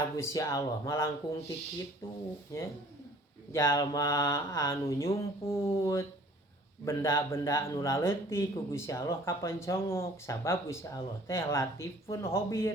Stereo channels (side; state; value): both; normal; correlation 0.53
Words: Gusti Allah malangkung ti kitu nya. Jalma anu nyumput benda-benda anu laleutik ku Gusti Allah kapancongok sabab Gusti Allah teh latifun